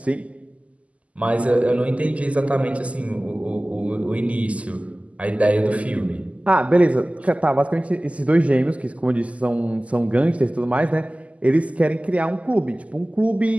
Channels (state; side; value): late; left; 0.067 ms